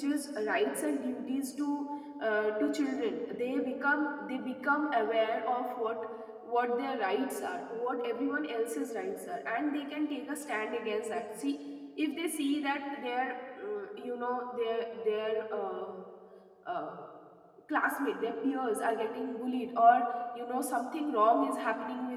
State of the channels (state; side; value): identical; both; correlation 1.00